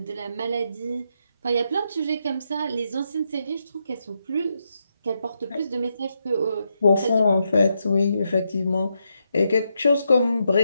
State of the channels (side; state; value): both; inverted; correlation -0.82